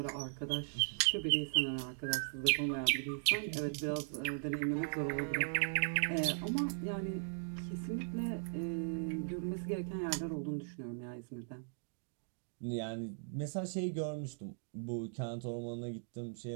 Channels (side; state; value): left; silent; digital silence